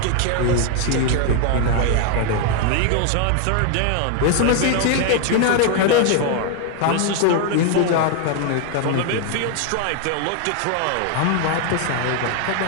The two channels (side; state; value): both; different; correlation 0.00